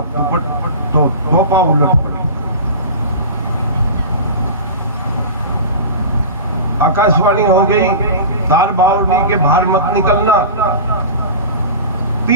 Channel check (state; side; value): inverted; both; correlation -0.32